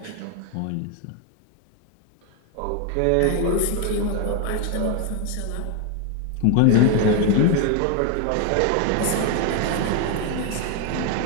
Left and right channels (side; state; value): both; different; correlation 0.01